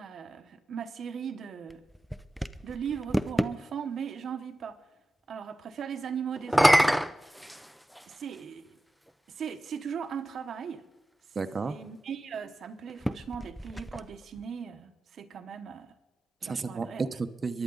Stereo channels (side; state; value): both; normal; correlation 0.94